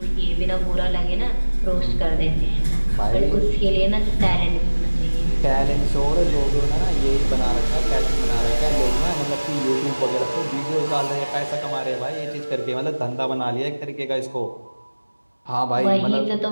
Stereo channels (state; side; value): inverted; both; correlation -1.00